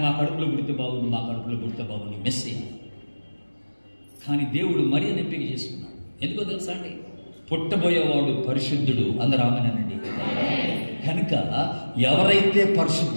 మా కడుపులో పుడితే బాగుండు, మా కడుపులో పుడితే బాగుండు మెస్సయ్య. కానీ దేవుడు మరియను ఎంపిక చేసుకున్నాడు. ఎందుకో తెలుసా అండి? పుట్టబోయేవాడు పరిశుద్ధుడు. అందరూ ఆమెనండి. కనుక ఎవరైతే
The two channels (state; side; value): inverted; both; correlation -1.00